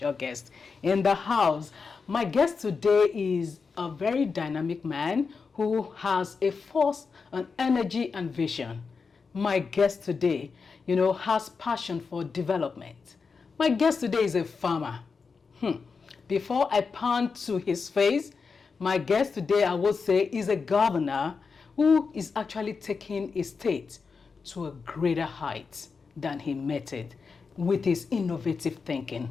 in the house. My guest today is a very dynamic man who has a force, an energy, and vision. My guest today, you know, has passion for development. My guest today is a farmer. Before I pan to his face, my guest today, I would say, is a governor who is actually taking his state to a greater height than he met it with his innovative thinking.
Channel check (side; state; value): right; quieter; 5.0 dB